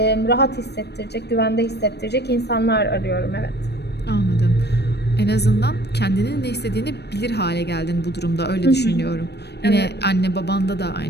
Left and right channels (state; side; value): late; right; 0.48 ms